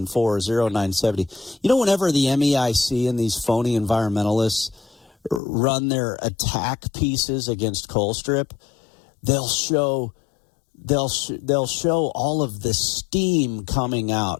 You know, whenever the MEIC and these phony environmentalists run their attack pieces against Colstrip, they'll show all of the steam coming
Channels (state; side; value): drops out; right; at 5.4 s